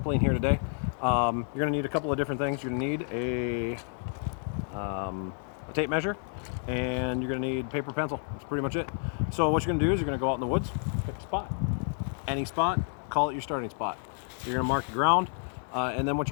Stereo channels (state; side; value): silent; right; 56 dB below the other